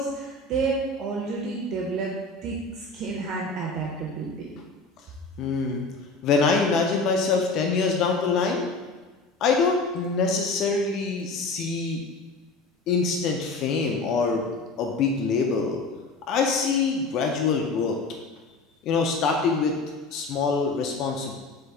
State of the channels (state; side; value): quieter; right; 3.4 dB